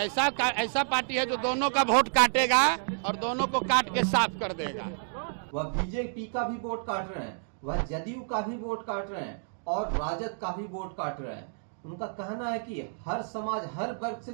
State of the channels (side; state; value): left; silent; digital silence